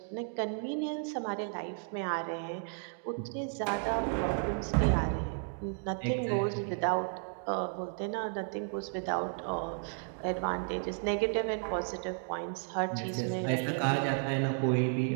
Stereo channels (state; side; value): silent; left; 56 dB below the other